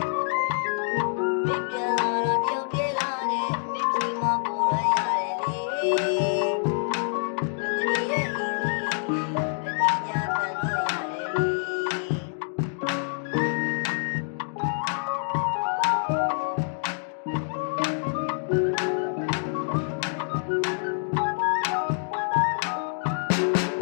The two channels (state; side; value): silent; right; digital silence